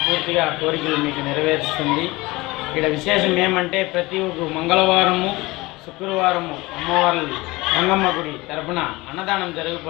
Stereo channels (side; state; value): right; quieter; 21.7 dB